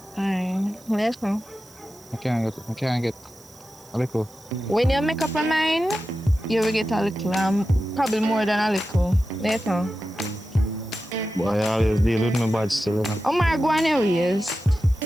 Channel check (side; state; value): right; noise; hiss, 24 dB below the sound